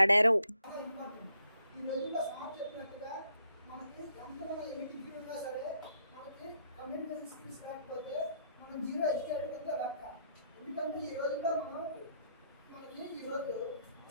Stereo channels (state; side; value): inverted; both; correlation -0.72